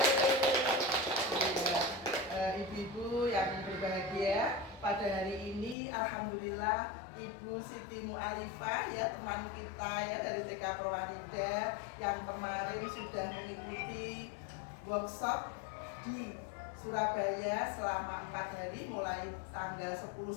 Iya, ibu-ibu yang berbahagia, pada hari ini alhamdulillah Ibu Siti Mu'alifah ya, teman kita ya dari TK Perwanida yang kemarin sudah mengikuti workshop di Surabaya selama 4 hari mulai tanggal 10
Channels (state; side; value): drops out; right; at 5.8 s